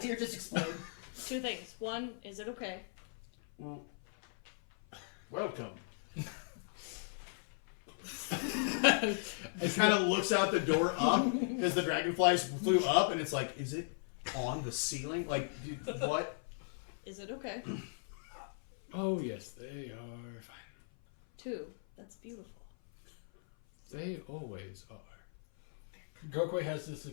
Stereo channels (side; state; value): right; silent; 53 dB below the other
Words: deer just explode? Two things. One, is it okay? Welcome. It kind of looks out the door up because the dragonflies flew up, and it's like, is it on the ceiling? Like, dude, what? Is it okay? Oh, yes, they are fine. Two, that's beautiful. They always are. Gokwe has this